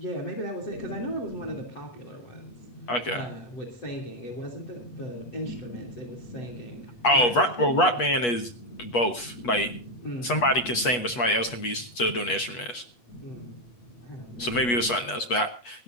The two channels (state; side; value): late; right; 8.3 ms